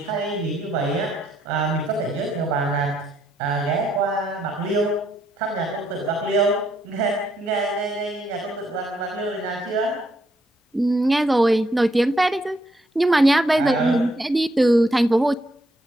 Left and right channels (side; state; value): both; normal; correlation 0.74